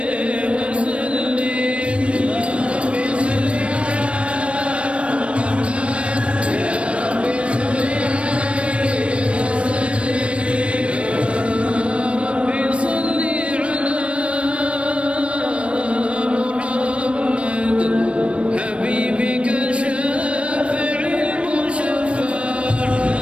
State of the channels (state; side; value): late; left; 0.060 ms